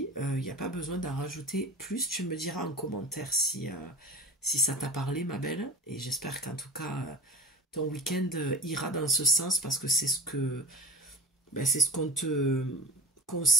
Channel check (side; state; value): both; normal; correlation 0.35